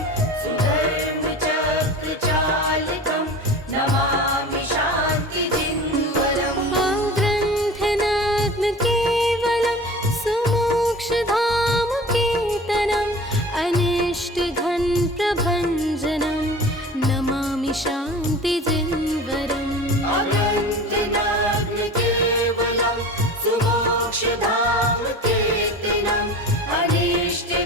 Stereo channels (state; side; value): normal; both; correlation 0.37